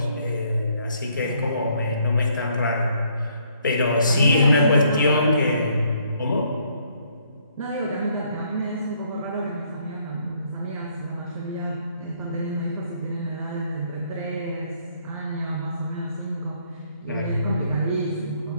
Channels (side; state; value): both; inverted; correlation -0.68